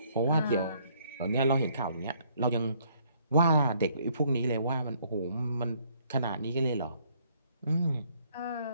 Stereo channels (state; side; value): inverted; both; correlation -0.65